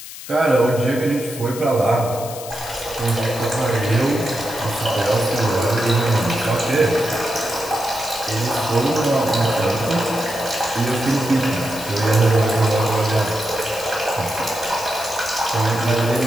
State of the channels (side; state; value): left; noise; hiss, 13 dB below the sound